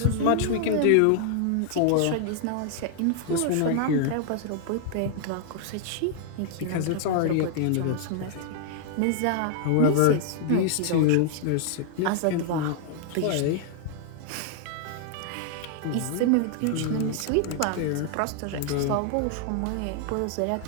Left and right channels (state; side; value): different; both; correlation 0.00